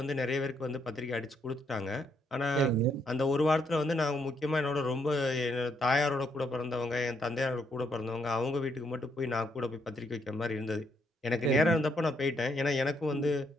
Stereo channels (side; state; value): both; normal; correlation 0.74